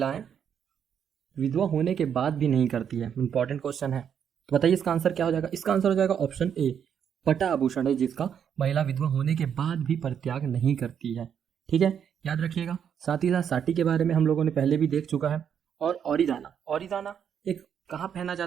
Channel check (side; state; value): left; quieter; 8.2 dB